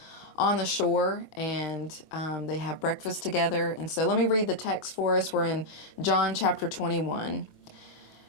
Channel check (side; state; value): right; late; 25 ms